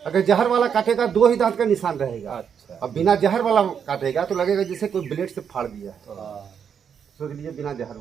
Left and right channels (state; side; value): quieter; left; 7.5 dB